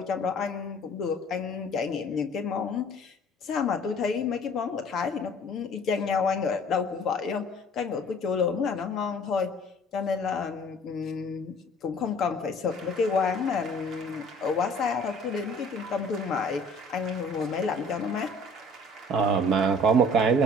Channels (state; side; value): normal; both; correlation 0.52